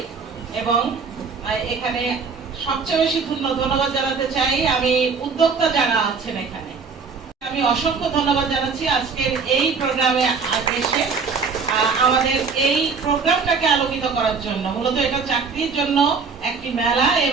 এবং এখানে সবচেয়ে বেশি ধন্যবাদ জানাতে চাই আমি উদ্যোক্তা যারা আছেন এখানে। আমি অসংখ্য ধন্যবাদ জানাচ্ছি আজকের এই প্রোগ্রামে এসে আমাদের এই প্রোগ্রামটাকে আলোকিত করার জন্য। মূলত এটা চাকরির জন্য একটি মেলা,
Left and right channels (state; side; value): quieter; left; 5.2 dB